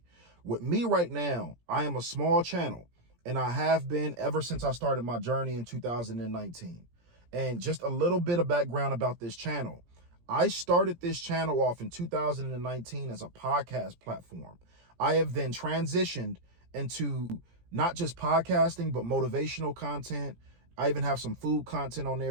With me right now, I am a small channel, and I have been ever since I started my journey in 2019. And just a little bit of background about this channel. I started this channel off in 2019 as a podcast platform. I have then transitioned into not just podcasting, but motivational content. I even have some food content on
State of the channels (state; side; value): late; left; 17 ms